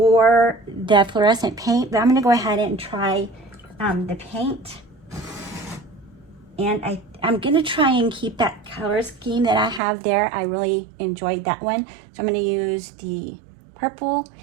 the fluorescent paint, but I'm gonna go ahead and try the paint. And I'm gonna try and keep that color scheme that I have there. I really enjoyed that one. So I'm gonna use the purple.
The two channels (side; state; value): left; drops out; at 9.8 s